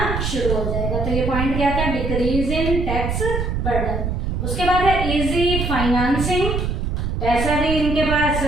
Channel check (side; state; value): right; noise; rumble, 2 dB below the sound